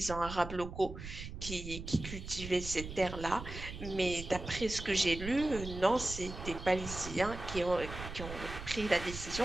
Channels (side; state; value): right; noise; rumble, 9 dB below the sound